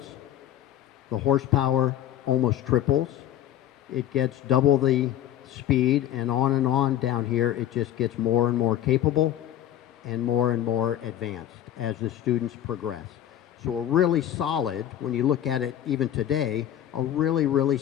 the horsepower almost triples, it gets double the speed, and on down here it just gets more and more capable and more advanced as the students progress. So a really solid, when you look at it even today, a really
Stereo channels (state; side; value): quieter; right; 11.6 dB